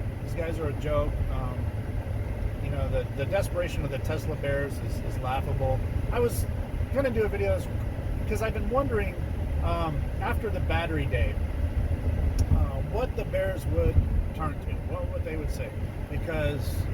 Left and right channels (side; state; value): both; identical; correlation 1.00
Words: these guys are a joke. The desperation of the Tesla bears is laughable. I was going to do a video because I've been wondering after the battery day what the bears would turn to, what they would say. Because